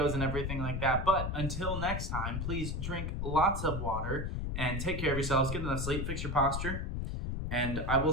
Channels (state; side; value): noise; left; rumble, 2 dB below the sound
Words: and everything like that. But until next time, please drink lots of water and take care of yourselves. Get enough sleep, fix your posture, and I will